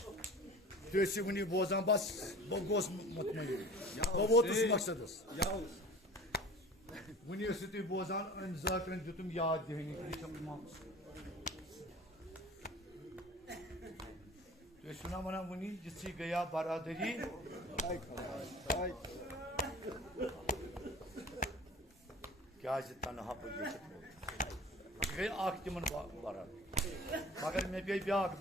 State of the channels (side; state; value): both; normal; correlation 0.41